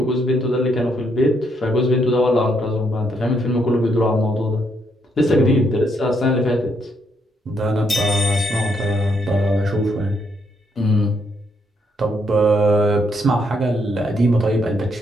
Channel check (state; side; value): normal; both; correlation 0.75